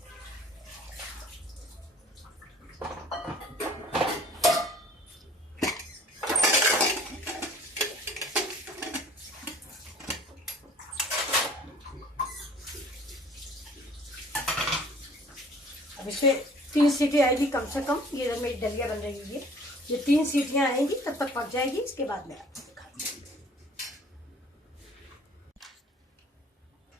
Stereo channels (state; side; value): normal; both; correlation 0.52